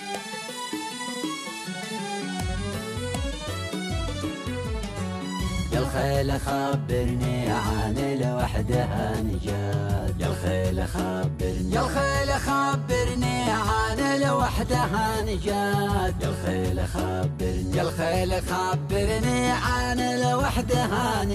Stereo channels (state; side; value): identical; both; correlation 1.00